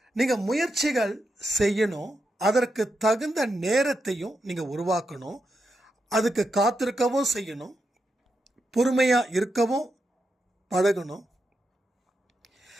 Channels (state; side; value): normal; both; correlation 0.85